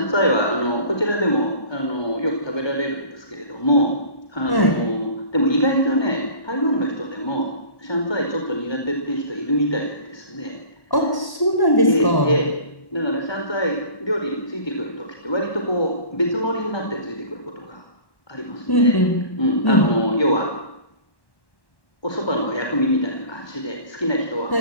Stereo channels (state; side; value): late; right; 1.1 ms